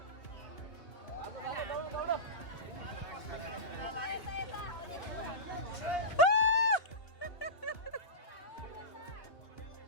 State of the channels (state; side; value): late; right; 2.8 ms